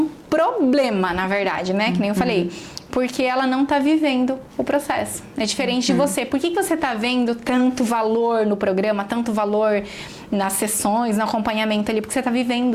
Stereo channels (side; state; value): both; identical; correlation 1.00